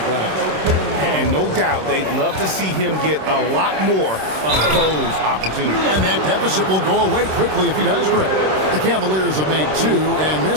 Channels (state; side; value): late; left; 26 ms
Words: glass. And no doubt, they'd love to see him get a lot more of those opportunities. And that deficit will go away quickly if he does, Greg. The Cavaliers have made 2 and